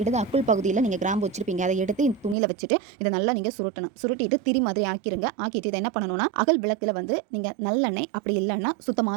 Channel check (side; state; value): left; drops out; at 2.4 s